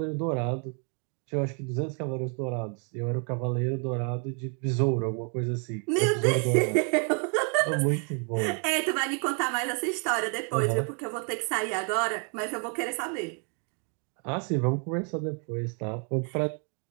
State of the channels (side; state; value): left; quieter; 39.7 dB